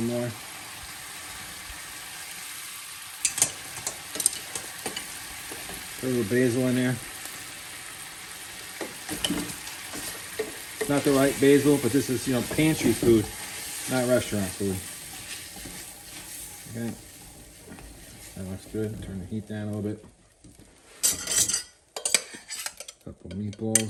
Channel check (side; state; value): both; identical; correlation 1.00